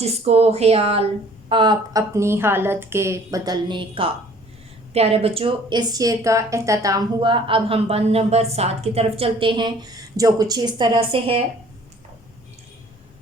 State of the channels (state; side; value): normal; both; correlation 0.54